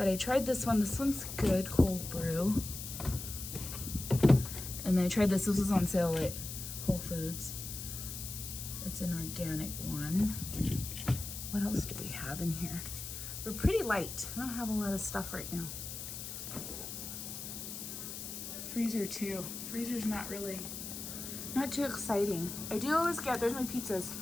I tried this one. This one's good, cold brew. And then I tried this. This was on sale at Whole Foods. It's an organic one. What else do we have in here? We're pretty light. I don't have a lot of stuff right now. Freezer too. Freezer's not too exciting. I do always get, there's my pizzas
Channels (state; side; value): noise; left; hiss, 8 dB below the sound